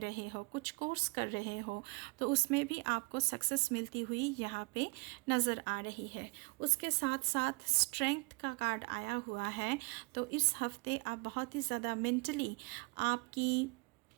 हो, कुछ कोर्स कर रहे हो, तो उसमें भी आपको सक्सेस मिलती हुई यहाँ पे नज़र आ रही है। उसके साथ साथ स्ट्रेंथ का कार्ड आया हुआ है, तो इस हफ्ते आप बहुत ही ज़्यादा मेंटली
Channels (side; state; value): left; quieter; 29.9 dB